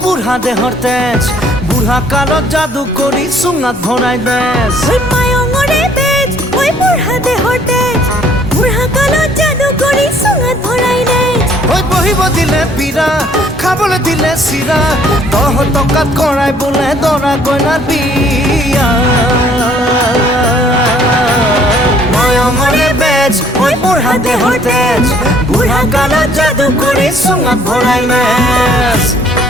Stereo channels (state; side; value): noise; left; rumble, 20 dB below the sound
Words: বুড়া দেহর তেজ বুড়া কালত জাদু করি সুঙাত ভরাই বেজ ওই মায়ঙরে বেজ ওই বুড়া দেহর তেজ বুড়া কালত জাদু করি সুঙাত ভরাই বেজ ওই বহিব দিলে পীড়া খাবলে দিলে চিৰা দহ টকাত কৰাই বোলে দৰা কইনাৰ বিয়া মায়ঙরে বেজ ওই বুড়া দেহর তেজ বুড়া কালত জাদু করি সুঙাত ভরাই বেজ